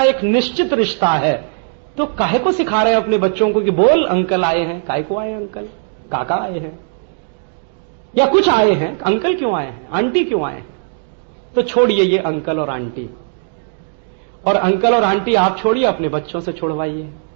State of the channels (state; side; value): silent; left; digital silence